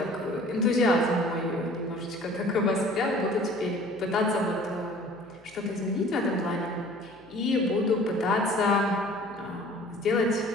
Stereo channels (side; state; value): left; noise; hum, 28 dB below the sound